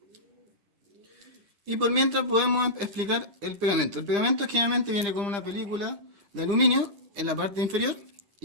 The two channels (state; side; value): late; left; 9.9 ms